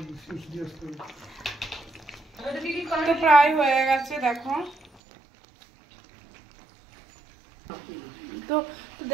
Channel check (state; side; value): drops out; left; at 4.9 s